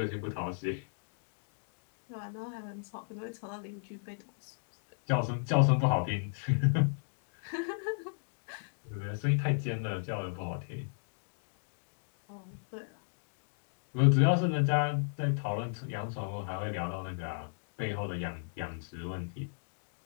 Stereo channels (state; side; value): silent; right; digital silence